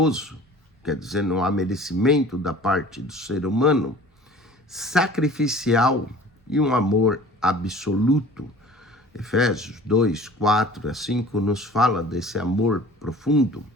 Quer dizer, não há merecimento da parte do ser humano, sacrificial e um amor absoluto. Efésios 2, 4 a 5 nos fala desse amor profundo.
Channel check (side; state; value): both; normal; correlation 0.46